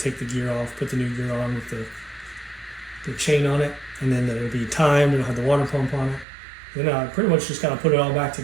the gear off, put the new gear on with the chain on it, and then it'll be timed, it'll have the water pump on it. Then I pretty much just kind of put it all back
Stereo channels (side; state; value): left; drops out; at 6.2 s